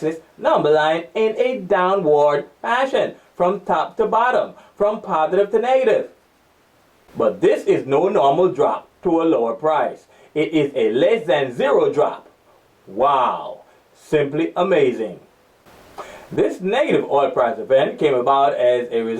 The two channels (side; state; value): both; identical; correlation 1.00